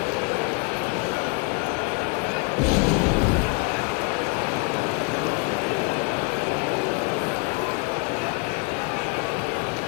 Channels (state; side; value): quieter; right; 33.0 dB